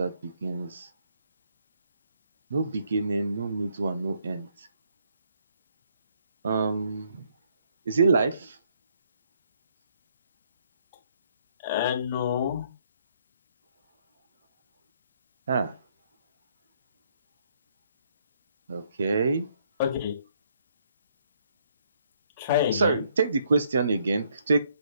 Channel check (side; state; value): both; inverted; correlation -0.69